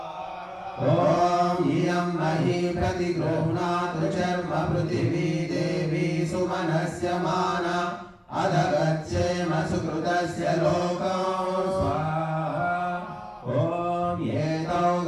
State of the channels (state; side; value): identical; both; correlation 1.00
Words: ఓం ఇయం మహీ ప్రతిగృహ్ణాతు చర్మ పృథివీ దేవీ సుమనస్య మానా అధగచ్చేమ సుకృతస్య లోకం. ఓం ఏతౌ